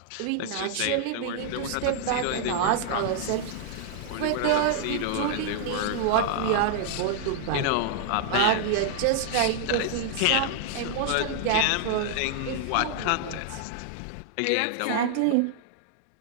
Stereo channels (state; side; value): different; both; correlation -0.01